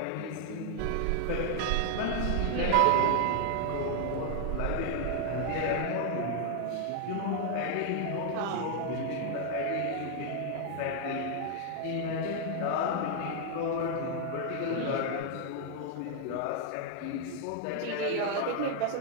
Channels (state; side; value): different; both; correlation 0.00